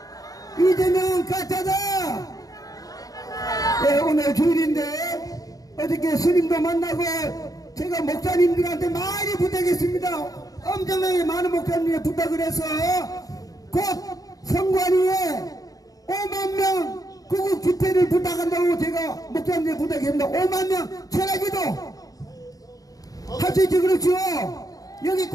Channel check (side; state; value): right; late; 0.17 ms